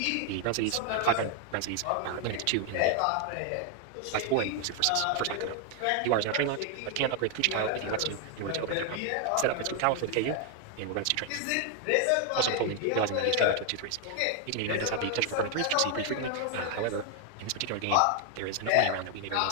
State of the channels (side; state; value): both; different; correlation 0.00